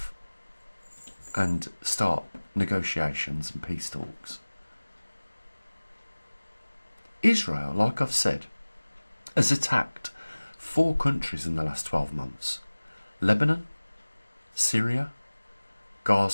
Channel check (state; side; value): inverted; both; correlation -1.00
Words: and start negotiations and peace talks? Israel, like I've said, has attacked 4 countries in the last 12 months. Lebanon, Syria,